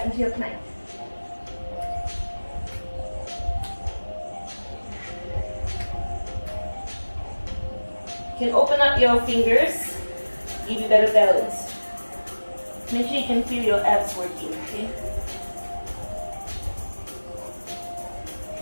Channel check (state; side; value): inverted; both; correlation -1.00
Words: into your plank. You can open up your fingers give you better balance. Make sure you can feel your abs working, okay?